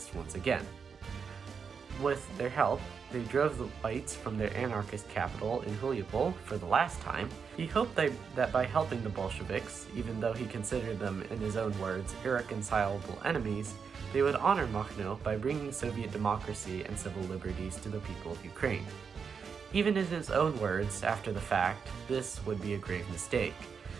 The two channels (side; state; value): left; quieter; 6.1 dB